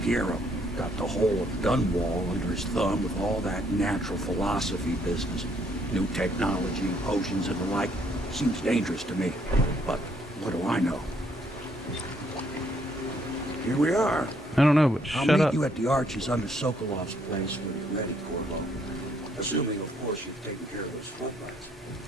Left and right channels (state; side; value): normal; both; correlation 0.68